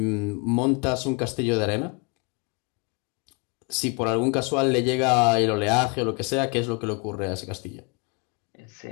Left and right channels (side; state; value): right; quieter; 32.2 dB